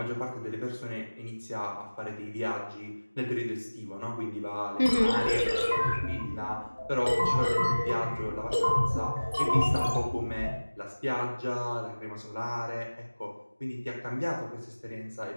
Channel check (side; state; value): both; inverted; correlation -1.00